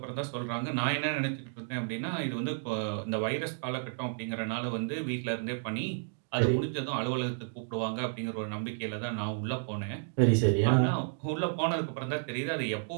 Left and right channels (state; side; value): silent; left; digital silence